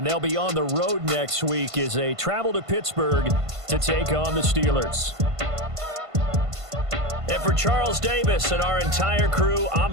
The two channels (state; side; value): late; left; 1.5 ms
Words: they'll be on the road next week as they travel to Pittsburgh to take on the Steelers. And for Charles Davis and our entire crew, I'm